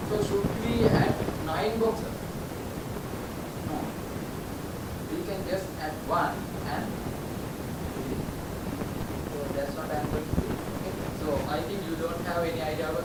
So should we add 9 boxes? No. We can just add 1 and so that's what I'm going to do. Okay. So I think you don't have any idea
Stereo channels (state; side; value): identical; both; correlation 1.00